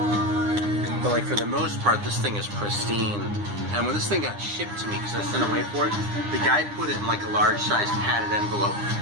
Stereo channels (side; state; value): left; late; 9.8 ms